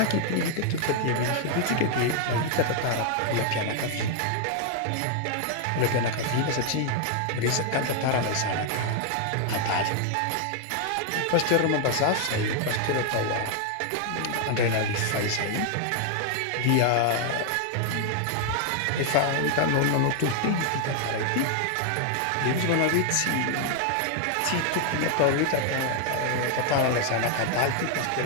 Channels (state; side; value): different; both; correlation 0.00